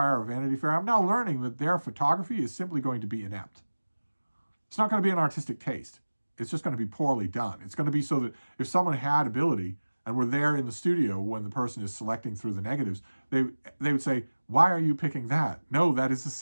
or Vanity Fair, I'm now learning that their photography is simply going to be inept. It's not going to be an artistic taste. It's just going to be poorly done. It's going to be so that if someone had ability and were there in the studio when the person is selecting through the negatives, they would say, why are you picking that? No, that is a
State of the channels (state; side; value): inverted; both; correlation -1.00